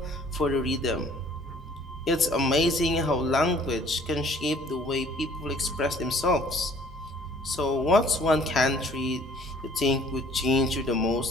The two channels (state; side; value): normal; both; correlation 0.56